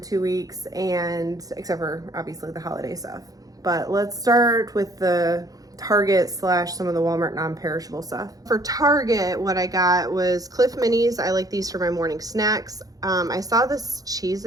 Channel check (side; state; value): left; late; 0.17 ms